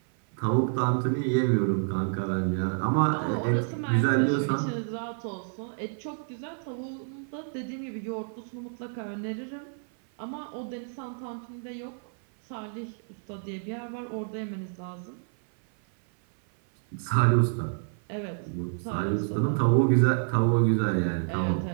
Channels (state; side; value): silent; left; 56 dB below the other